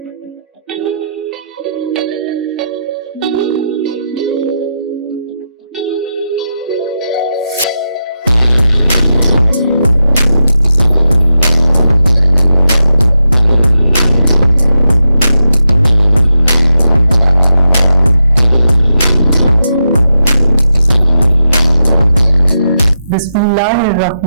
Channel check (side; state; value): both; inverted; correlation -0.87